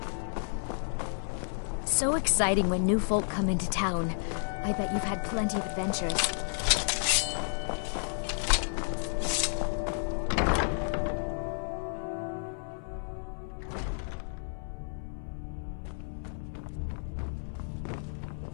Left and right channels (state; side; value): silent; right; 57 dB below the other